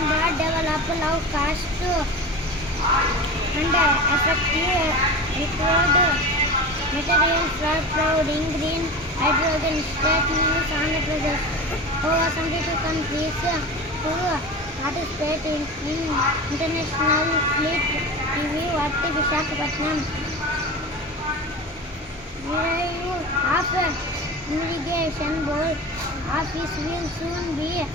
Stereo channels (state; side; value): normal; both; correlation 0.30